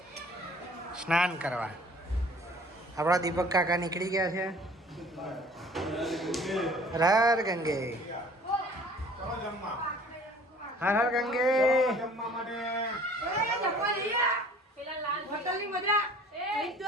સ્નાન કરવા. આપણા દીપક કાકા નીકળી ગયા છે. હર હર ગંગે હર હર ગંગે. પેલા લાલ હોટલની મજા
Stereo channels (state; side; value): normal; both; correlation 0.51